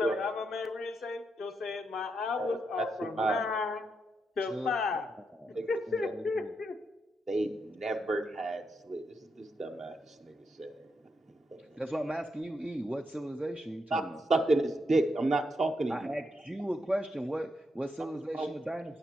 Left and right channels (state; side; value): normal; both; correlation 0.82